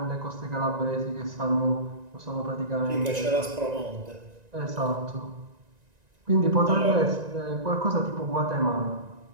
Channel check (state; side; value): late; left; 1.9 ms